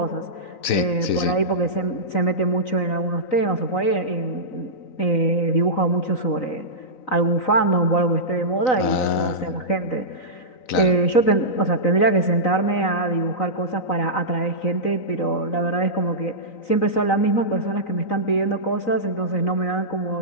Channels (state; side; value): late; right; 3.9 ms